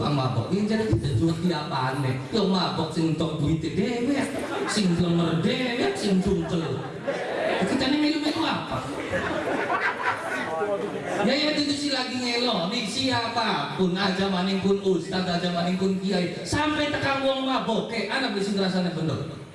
mabok. Iki jadi juwet di apane? Yo mabok sing entuk duite dhewe, sing lemer dhewe, sing cungkel. Kita nih melu-melu apa? Ya itu sih lagi ngelo nih siapapun aja maning pun ustaz aja maning pun kiai sampai tekan wong mabok anak bisa ngerasanya bener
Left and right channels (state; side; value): identical; both; correlation 1.00